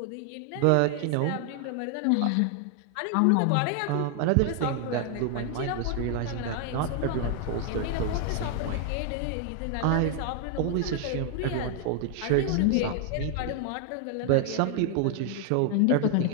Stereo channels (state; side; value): different; both; correlation 0.00